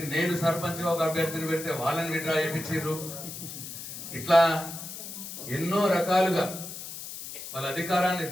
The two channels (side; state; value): left; noise; hiss, 10 dB below the sound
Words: నేను సర్పంచ్గా ఒక అభ్యర్థిని పెడితే వాళ్ళని విడ్రా చేయించారు. ఇట్లా ఎన్నో రకాలుగా వాళ్ళ అధికారాన్ని